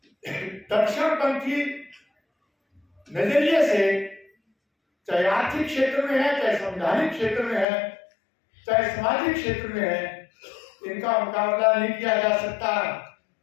दक्षिणपंथी नजरिए से चाहे आर्थिक क्षेत्र में है, चाहे संवैधानिक क्षेत्र में है, चाहे सामाजिक क्षेत्र में है, इनका मुकाबला नहीं किया जा सकता।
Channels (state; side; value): drops out; right; at 7.7 s